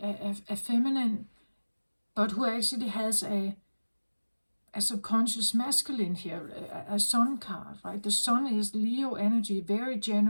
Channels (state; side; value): inverted; both; correlation -1.00